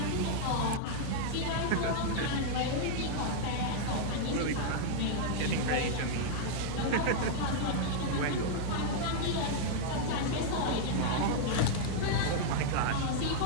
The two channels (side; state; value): both; different; correlation -0.01